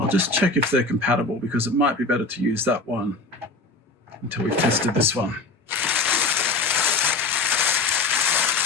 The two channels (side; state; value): right; quieter; 3.3 dB